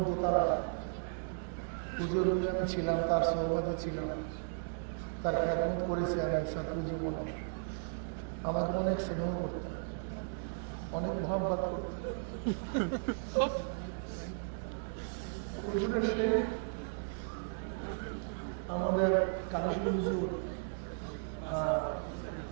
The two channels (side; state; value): left; silent; digital silence